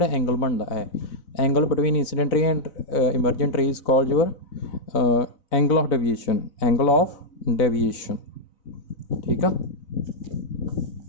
एंगल बनता है एंगल बिटवीन इंसीडेंट रे and emergent ray is called your angle of deviation ठीक है।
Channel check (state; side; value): late; right; 4.0 ms